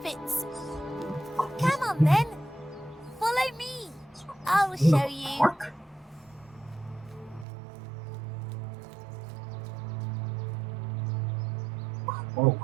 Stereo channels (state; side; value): drops out; left; at 7.5 s